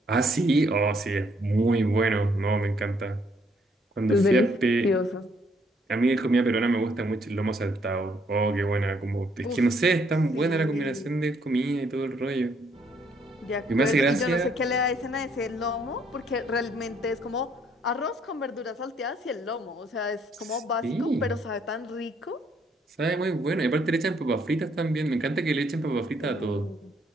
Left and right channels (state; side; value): normal; both; correlation 0.68